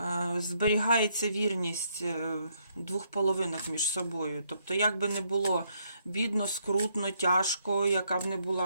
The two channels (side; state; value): both; inverted; correlation -0.73